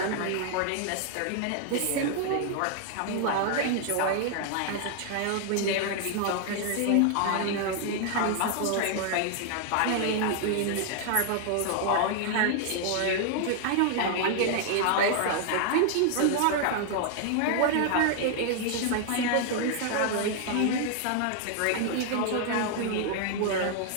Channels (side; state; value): both; different; correlation 0.00